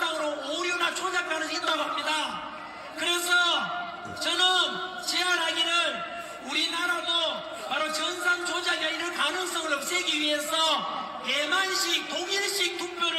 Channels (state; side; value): identical; both; correlation 1.00